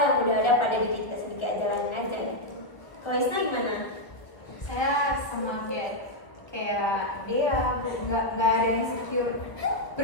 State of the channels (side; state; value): right; late; 1.1 ms